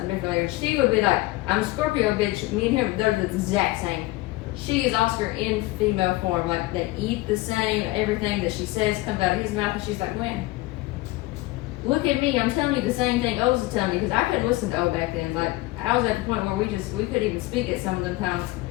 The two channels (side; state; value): right; quieter; 19.6 dB